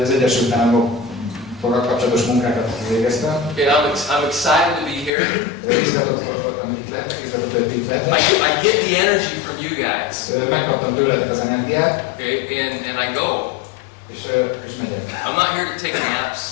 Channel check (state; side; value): drops out; right; at 5.1 s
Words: az Egyesült Államokkal kapcsolatos munkákat végeztem. Okay, I'm excited to be here. Rizgatott voltam itt le, rizgatott, hogy itt lehetek. I get the energy from you guys. Megkaptam tőletek az energiát, Okay, and I go. és megyek. I'm not here to take naps.